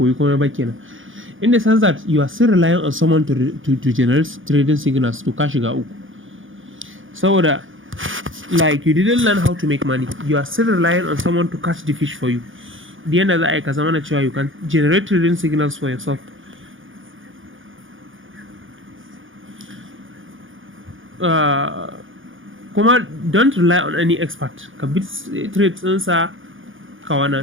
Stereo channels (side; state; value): left; late; 0.58 ms